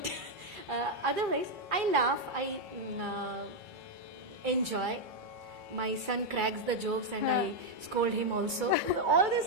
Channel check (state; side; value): normal; both; correlation 0.00